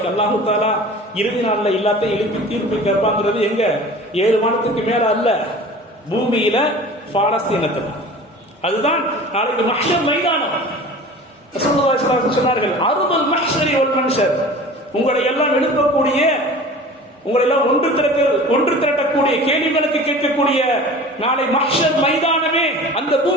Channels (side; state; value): both; normal; correlation 0.40